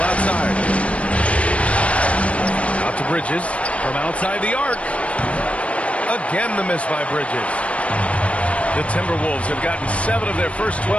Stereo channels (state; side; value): late; right; 0.063 ms